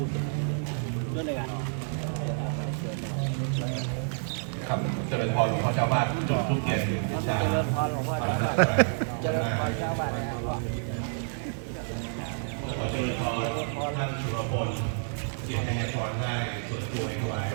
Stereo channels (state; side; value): silent; left; 59 dB below the other